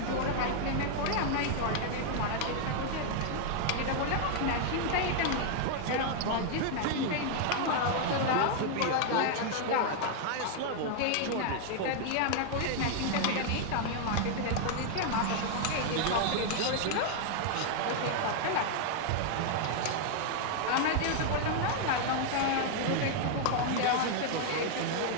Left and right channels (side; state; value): both; different; correlation 0.00